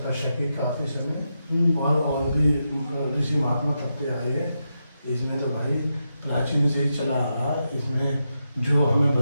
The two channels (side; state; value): both; inverted; correlation -0.86